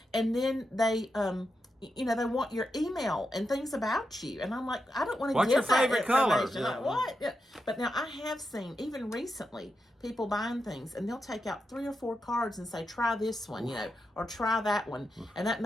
And then they they want your email and things about you. And I'm like, I don't want to What's give your favorite color? information. Like, what? Yeah. But now I have seen, even recently, people buying things, and they'll take out 3 or 4 cards and say, try this one, or try that one. And that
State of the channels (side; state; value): both; normal; correlation 0.87